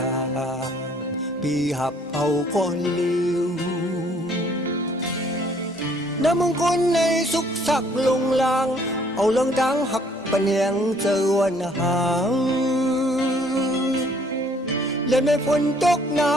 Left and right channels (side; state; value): both; normal; correlation 0.61